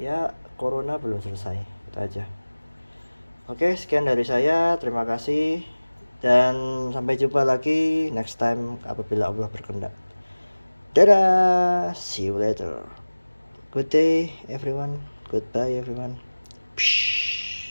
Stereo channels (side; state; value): both; inverted; correlation -1.00